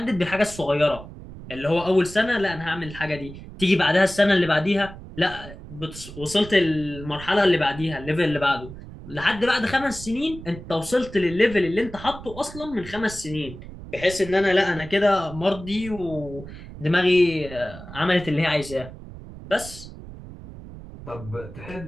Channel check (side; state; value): right; noise; rumble, 14 dB below the sound